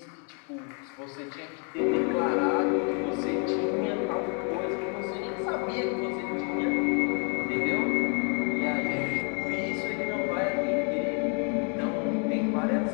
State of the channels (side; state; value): right; quieter; 39.9 dB